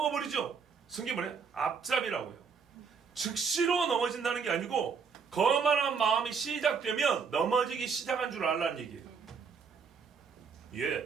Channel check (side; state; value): left; quieter; 5.9 dB